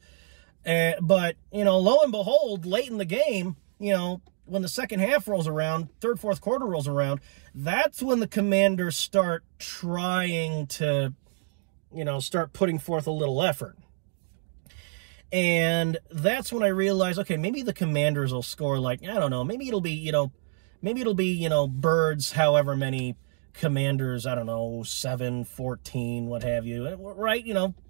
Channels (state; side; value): silent; left; digital silence